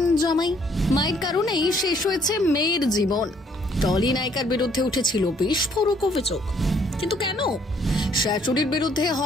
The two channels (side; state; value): both; normal; correlation 0.65